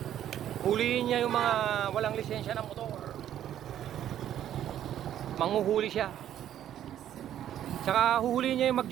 Huliin niya yung mga walang lisensya ng motor. Manghuhuli siya. Tsaka huhuliin niya yung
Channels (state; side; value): quieter; left; 11.0 dB